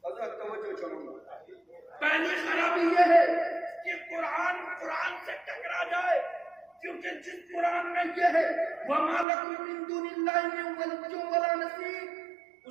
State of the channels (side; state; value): left; drops out; at 9.2 s